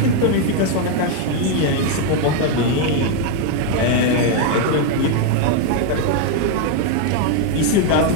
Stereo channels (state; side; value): different; both; correlation 0.01